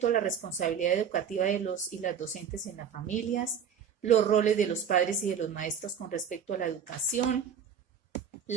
la responsabilidad educativa de los y las docentes en las familias, los roles de los padres y de los maestros con respecto a la educación,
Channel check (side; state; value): left; quieter; 7.7 dB